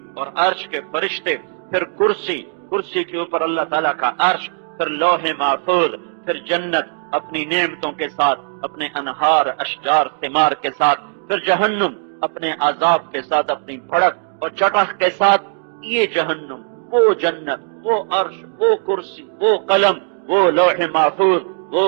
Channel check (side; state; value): left; silent; 63 dB below the other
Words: اور عرش کے فرشتے، پھر کرسی کے اوپر اللہ تعالیٰ کا عرش، پھر لوح محفوظ، پھر جنت اپنی نعمتوں کے ساتھ، اپنے انہار، اشجار، ثمار کے ساتھ، پھر جہنم اپنے عذاب کے ساتھ، اپنی بھڑک اور چٹخ کے ساتھ۔ یہ جہنم، وہ جنت، وہ عرش، وہ کرسی، وہ قلم، وہ لوح محفوظ،